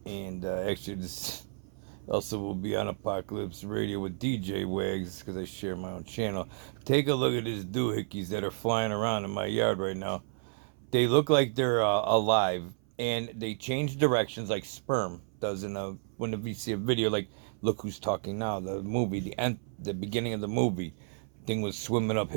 And actually, this also will be on Apocalypse Radio with DJ Wags because I share my own channel. Take a look at these doohickeys that are flying around in my yard right now. They look like they're alive, and they change directions like sperm does in a when you see a video like Look Who's Talking Now, the movie, the beginning of the movie, thing was swimming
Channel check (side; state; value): left; silent; 57 dB below the other